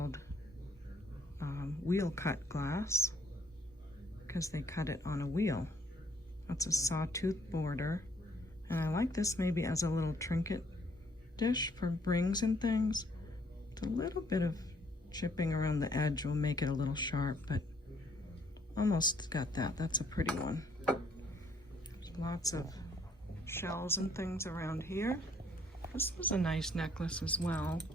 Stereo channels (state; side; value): normal; both; correlation 0.65